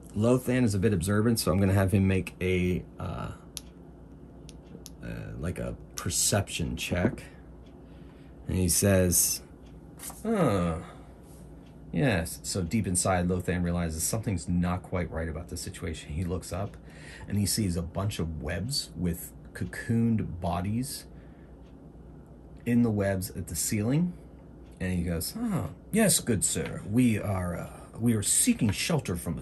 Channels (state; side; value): identical; both; correlation 1.00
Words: is a bit observant, so I'm going to have him make a like a perception check. And he says, yes. So deep inside, Lothan realizes something's not quite right about the situation. He looks up, and he sees a bunch of webs with cocooned bodies in the webs at the ceiling. And he goes, yes, good sir. We are seeking shelter from